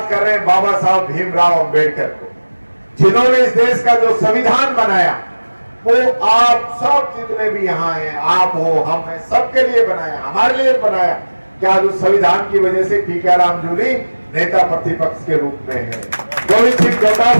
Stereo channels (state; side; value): inverted; both; correlation -1.00